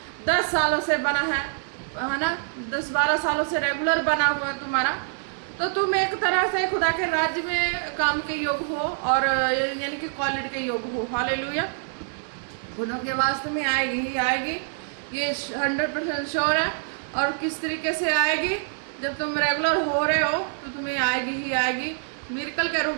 10 सालों से बना है ना, 10-12 सालों से रेगुलर बना हुआ है तुम्हारा, तो तुम एक तरह से खुदा के राज्य में काम के योग हो, और यानी कि क्वालिटी के योग हो। हालेलुया। खुदा की आवाज़ तुम्हें आएगी ही आएगी, ये 100% श्योर है। और किस तरीके से आएगी? जब तुम रेगुलर हो रहे हो तो तुम्हें आएगी ही आएगी, मिरेकल के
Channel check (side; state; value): left; silent; digital silence